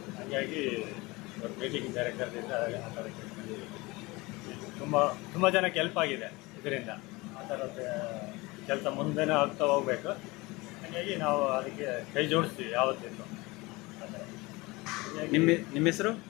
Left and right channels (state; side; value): quieter; right; 23.0 dB